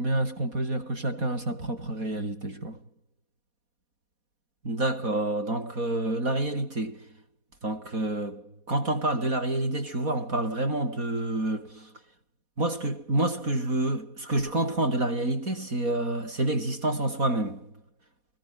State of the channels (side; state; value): left; late; 4.2 ms